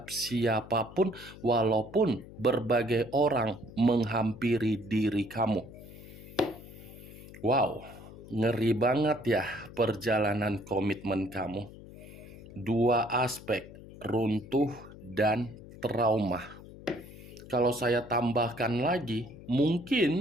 siapapun, walaupun berbagai orang menghampiri diri kamu. Wow, ngeri banget ya perjalanan komitmen kamu. Dua aspek, runtuh dan trauma. Kalau saya tambahkan lagi,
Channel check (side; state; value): left; noise; hum, 17 dB below the sound